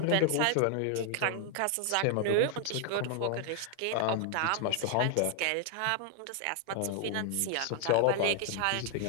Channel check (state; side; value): different; both; correlation 0.00